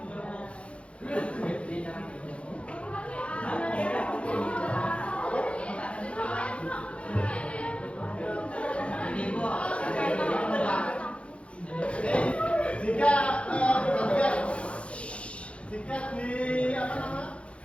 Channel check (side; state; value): right; late; 0.061 ms